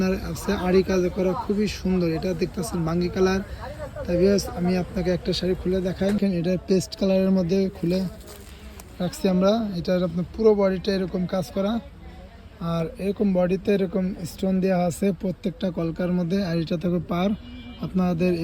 আছে আড়ি কাজ করা, খুবই সুন্দর। এটা দেখতেছেন বাঙ্গি কালার। তাই আমি আপনাকে একটা শাড়ি খুলে দেখাই। এটা পেস্ট কালারের মধ্যে খুলে রাখছি আমরা। এটার আপনার পুরো বডিটা এরকম কাজ করা, আর এরকম বডিতে এরকম স্টোন দেওয়া আছে প্রত্যেকটা কলকার মধ্যে। আর এটা থাকবে পার। আপনাদের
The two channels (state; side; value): identical; both; correlation 1.00